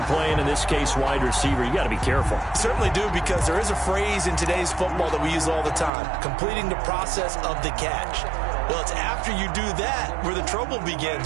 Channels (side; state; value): left; drops out; at 5.9 s